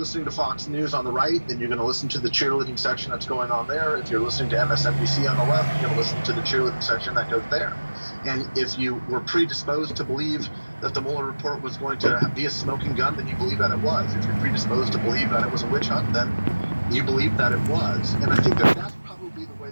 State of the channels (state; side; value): inverted; both; correlation -1.00